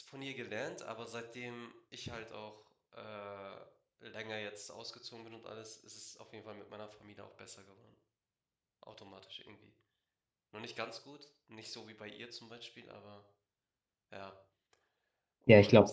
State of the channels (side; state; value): both; identical; correlation 1.00